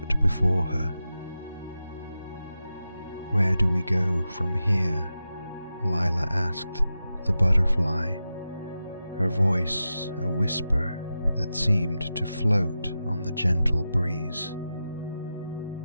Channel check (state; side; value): inverted; both; correlation -0.91